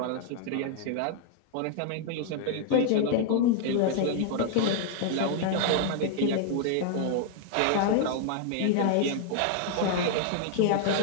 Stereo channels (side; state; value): both; different; correlation 0.00